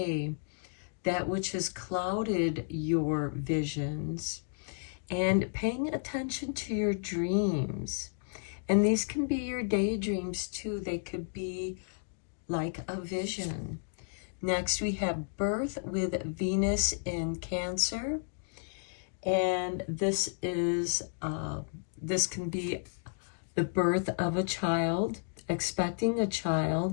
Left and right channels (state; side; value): silent; right; digital silence